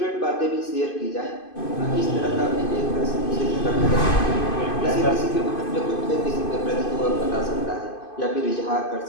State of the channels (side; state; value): right; late; 2.5 ms